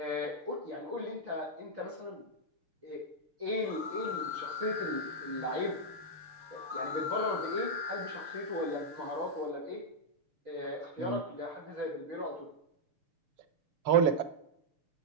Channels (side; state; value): left; late; 6.6 ms